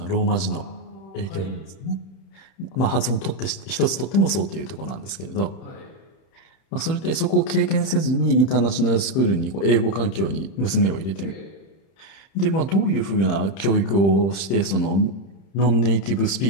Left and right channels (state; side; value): late; right; 31 ms